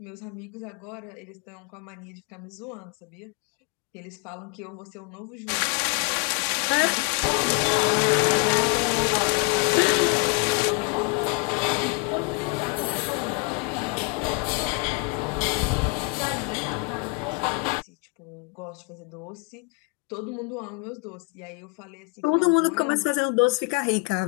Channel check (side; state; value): right; quieter; 30.4 dB